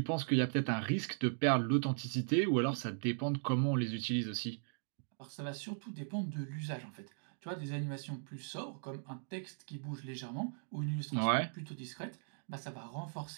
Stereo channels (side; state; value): left; silent; digital silence